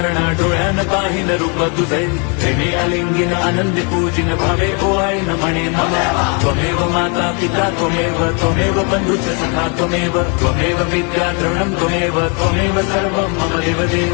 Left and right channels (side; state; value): right; quieter; 35.4 dB